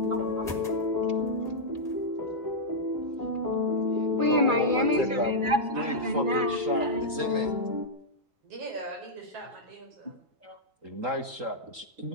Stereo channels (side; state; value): left; late; 3.8 ms